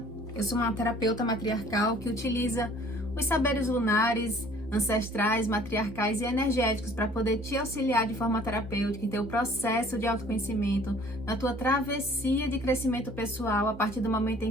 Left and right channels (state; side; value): normal; both; correlation 0.54